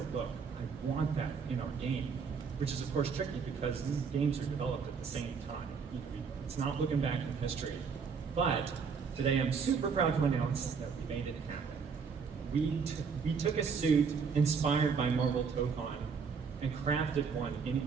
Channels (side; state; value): left; quieter; 5.8 dB